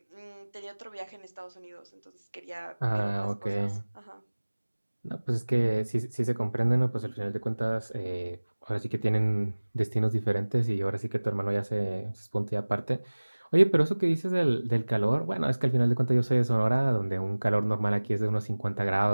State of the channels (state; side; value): inverted; both; correlation -1.00